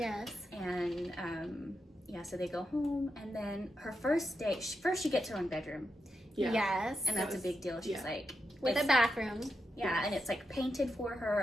And so they go home, and then her first day, first she gets her own bedroom, Yes. and that's a big deal. She's like, With a bathroom. yeah, and it's like painted for her,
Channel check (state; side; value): normal; both; correlation 0.86